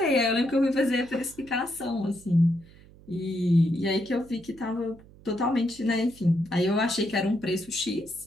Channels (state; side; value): noise; right; hum, 23 dB below the sound